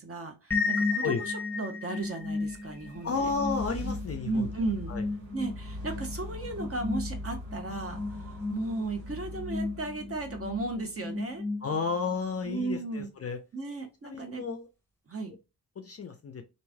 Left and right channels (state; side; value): normal; both; correlation 0.46